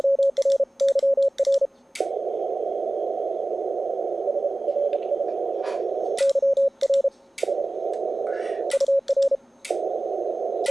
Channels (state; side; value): normal; both; correlation 0.97